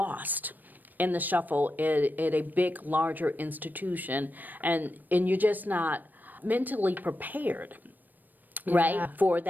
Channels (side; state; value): left; late; 0.088 ms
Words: in the shuffle at a big, larger institution, and you're just not mentally prepared, right, for